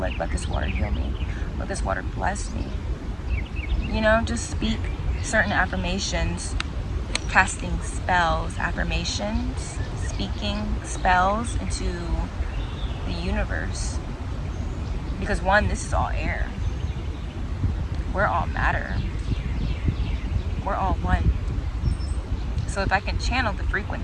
let this water heal me. Let this water bless me. You know, just speak certain affirmations, casting spells, affirmations, speaking spells into the universe. Because one, this is all air. We're all matter. We're all one. So if I can channel the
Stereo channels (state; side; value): identical; both; correlation 1.00